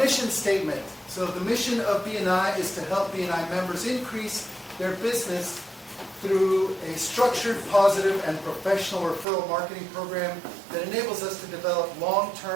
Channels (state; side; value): drops out; left; at 9.2 s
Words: statement. So the mission of BNI is to help BNI members increase their business through a structured, positive, and professional referral marketing program that enables us to develop